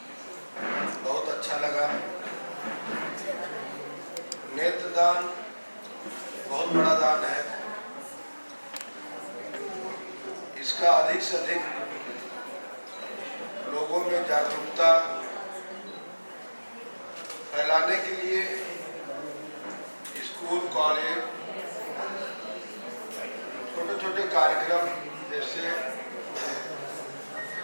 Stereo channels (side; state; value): both; inverted; correlation -1.00